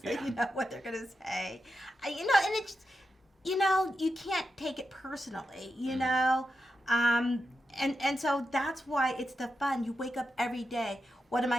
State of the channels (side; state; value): both; normal; correlation 0.88